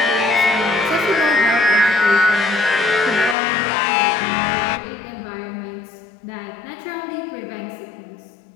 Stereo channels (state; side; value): drops out; right; at 3.4 s